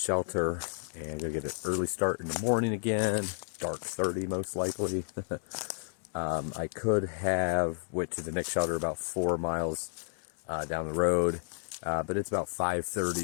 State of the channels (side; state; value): right; silent; digital silence